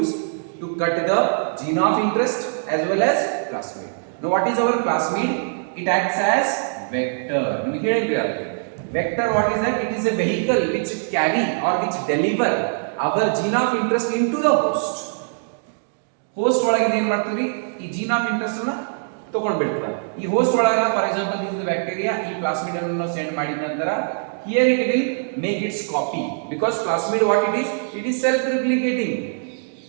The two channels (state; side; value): silent; left; digital silence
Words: to cut the gene of interest as well as plasmid. Now what is our plasmid? It acts as vector. Vector, what is that? It is a vehicle which carry or which deliver our gene of interest into the host. Host ಒಳಗೆ ಏನು ಮಾಡ್ತೀವಿ, ಈ gene of interest ಅನ್ನು ತಗೊಂಡು ಬಿಡ್ತೀವಿ. ಈ host ಒಳಗೆ for example this is bacteria, ಈ ಪ್ಲಾಸ್ಮಿಡ್ ಅನ್ನು ಸೆಂಡ್ ಮಾಡಿದ ನಂತರ here it will make its copy, because plasmid what it is self replicating